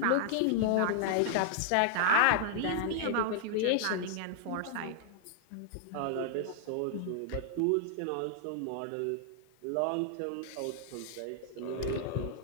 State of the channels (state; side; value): different; both; correlation -0.01